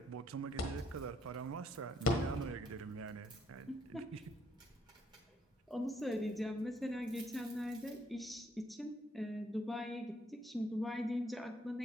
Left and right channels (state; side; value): normal; both; correlation 0.69